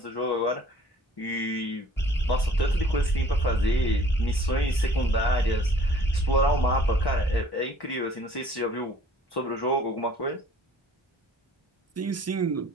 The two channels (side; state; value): both; normal; correlation 0.54